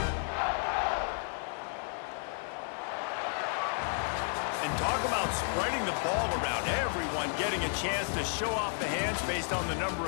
Talk about spreading the ball around. Everyone getting a chance to show off the hands based on the number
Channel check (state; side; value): silent; right; 56 dB below the other